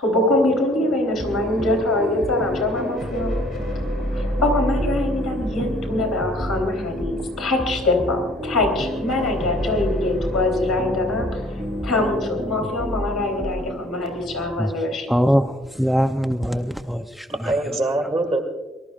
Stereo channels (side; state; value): both; normal; correlation 0.59